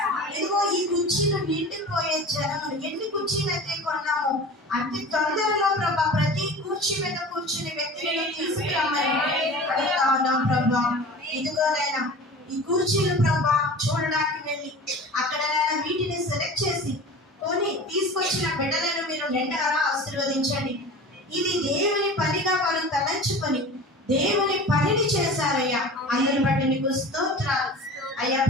ఇదిగో ఈ కుర్చీలు నిండిపోయే జనములు, ఎన్ని కుర్చీలు అయితే కొన్నాము అతి తొందరలో ప్రభా ప్రతి కుర్చీ మీద కూర్చుని వ్యక్తులను తీసుకురామని అడుగుతా ఉన్నాం ప్రభా. ఇదిగోనైనా ఈ కుర్చీలు ప్రభా చూడడానికి వెళ్ళి అక్కడైనా వీటిని సెలెక్ట్ చేసి కొని తీసుకొచ్చిన బిడ్డలను మీరు నిండగా ఆశీర్వదించండి. ఇది దేవుని పనిగా వారు తలంచుకొని దేవుని పనిని చేశారయ్యా. అందుని బట్టి నీకు స్తోత్రాలు అయ్యా.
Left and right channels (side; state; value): both; normal; correlation 0.37